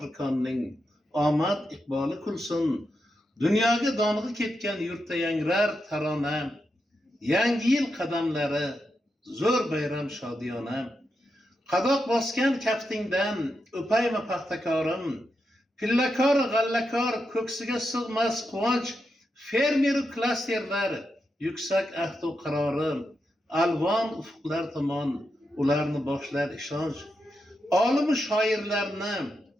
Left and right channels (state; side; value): normal; both; correlation 0.86